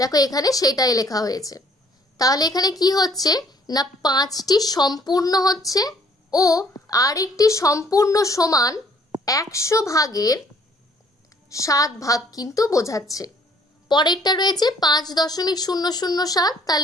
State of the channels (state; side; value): normal; both; correlation 0.61